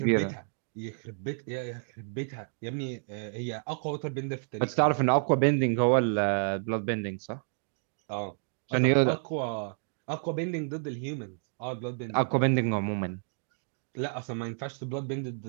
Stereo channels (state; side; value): silent; left; digital silence